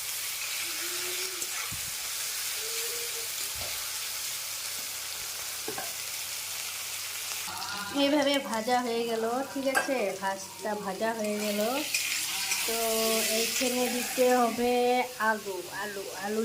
এইভাবে ভাজা হয়ে গেল, ঠিক আছে? ভাজটা ভাজা হয়ে গেল। তো এইখানে দিতে হবে আলু আলু আলু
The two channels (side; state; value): both; identical; correlation 1.00